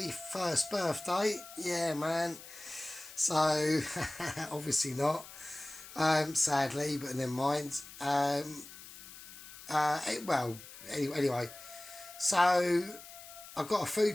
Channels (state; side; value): noise; left; hiss, 16 dB below the sound